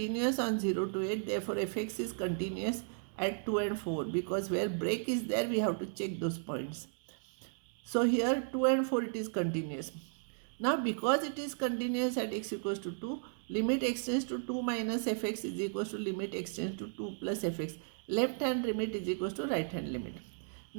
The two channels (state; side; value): silent; left; digital silence